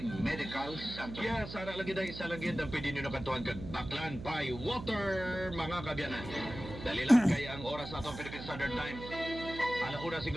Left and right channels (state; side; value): noise; right; hum, 10 dB below the sound